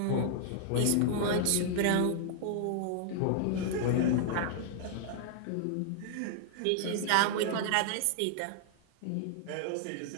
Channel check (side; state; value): both; different; correlation -0.01